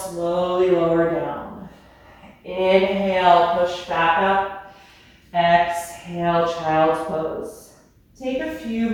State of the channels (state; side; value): identical; both; correlation 1.00